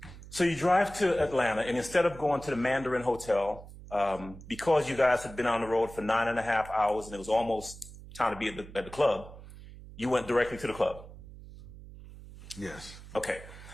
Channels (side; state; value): right; noise; hum, 16 dB below the sound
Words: So you drive to Atlanta, and instead of going to the Mandarin Hotel, because you guys had been on the road for 9.5 hours and it was almost time to be at the club, you went directly to the club. Yes. Okay.